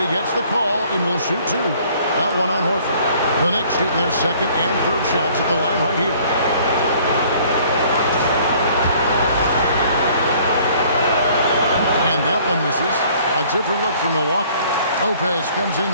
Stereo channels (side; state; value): both; inverted; correlation -0.56